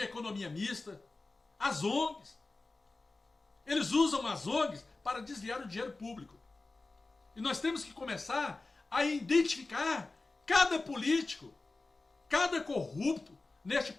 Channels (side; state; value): right; quieter; 3.4 dB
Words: economia mista, as ONGs. Eles usam as ONGs para desviar o dinheiro público. E nós temos que começar a identificar cada político, cada corrupto neste